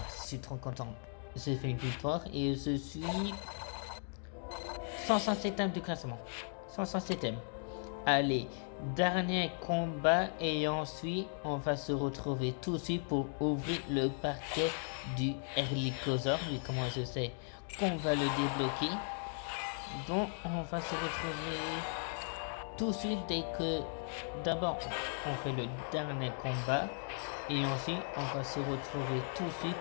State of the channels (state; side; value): silent; right; 53 dB below the other